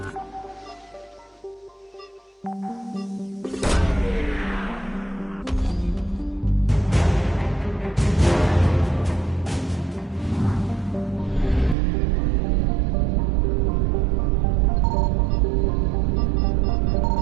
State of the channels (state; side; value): drops out; left; at 11.8 s